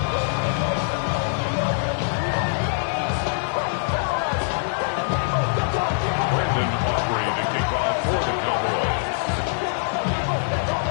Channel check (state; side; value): silent; right; digital silence